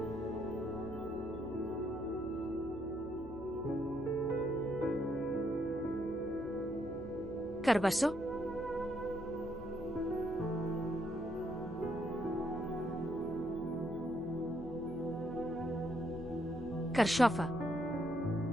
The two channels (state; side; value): noise; right; hum, 16 dB below the sound